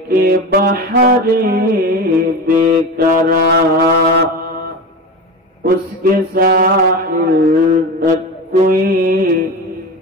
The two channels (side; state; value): both; normal; correlation 0.26